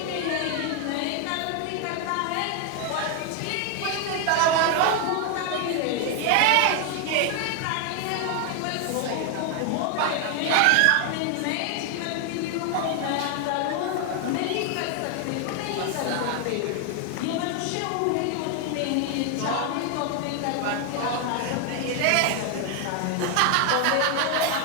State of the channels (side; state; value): both; different; correlation 0.01